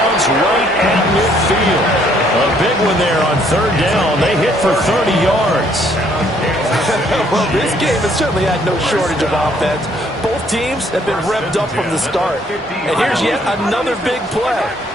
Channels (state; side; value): normal; both; correlation 0.65